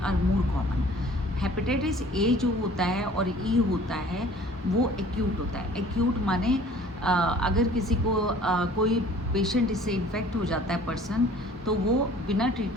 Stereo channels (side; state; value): both; normal; correlation 0.50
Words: more common. Hepatitis A जो होता है और ई होता है वो एक्यूट होता है। एक्यूट माने अगर किसी को कोई पेशेंट इससे इन्फेक्ट हो जाता है पर्सन, तो वो बिना